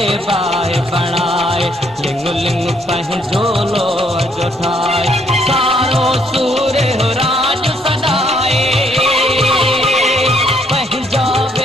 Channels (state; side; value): normal; both; correlation 0.69